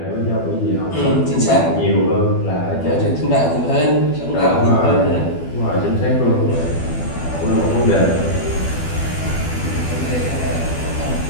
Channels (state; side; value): late; right; 12 ms